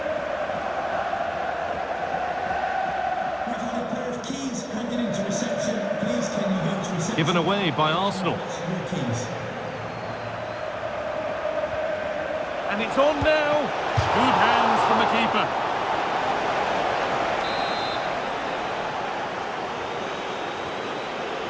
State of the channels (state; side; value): identical; both; correlation 1.00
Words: We've had a pair of keys handed into reception. Please, can you go to reception? Given away by Arsenal. Your keys. And it's on now. Good hands from the keeper.